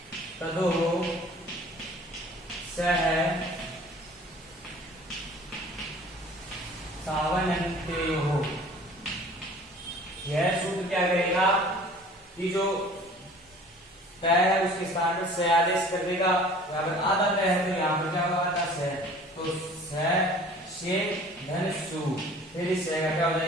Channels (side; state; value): both; normal; correlation 0.48